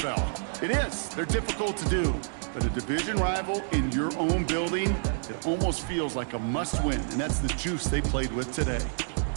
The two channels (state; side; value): silent; left; digital silence